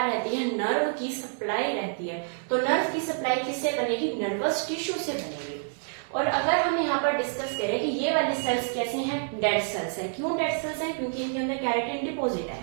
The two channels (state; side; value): silent; left; 59 dB below the other